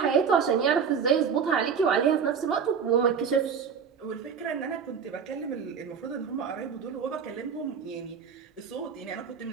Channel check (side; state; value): left; quieter; 6.7 dB